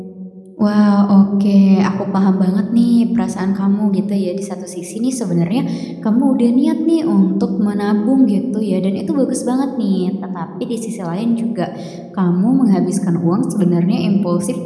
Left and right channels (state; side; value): identical; both; correlation 1.00